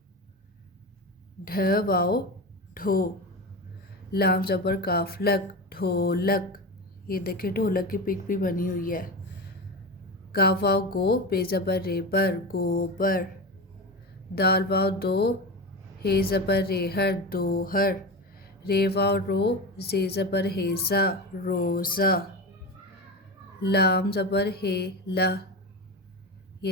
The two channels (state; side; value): normal; both; correlation 0.23